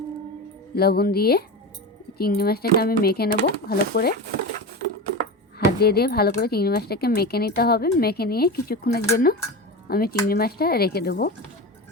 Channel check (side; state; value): both; normal; correlation 0.24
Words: লবণ দিয়ে চিংড়ি মাছটাকে আমি মেখে নেব ভালো করে। হাত দিয়ে দিয়ে ভালো করে চিংড়ি মাছটাকে মেখে নিতে হবে। মেখে নিয়ে কিছুক্ষণের জন্য আমি চিংড়ি মাছটা রেখে দেবো।